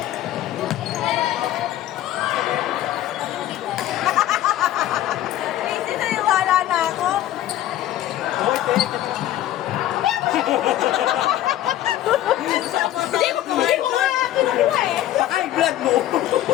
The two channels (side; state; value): right; quieter; 13.2 dB